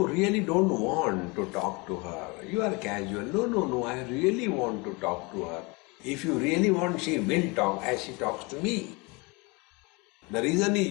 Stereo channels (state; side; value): quieter; right; 27.5 dB